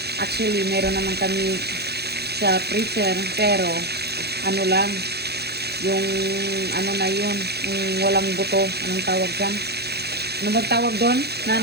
Actually, meron naman kami sa freezer, pero ano lang, yung ano na yun, yung walang buto. Anong tawag dyan? Ano ba tawag doon,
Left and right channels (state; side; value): late; left; 0.48 ms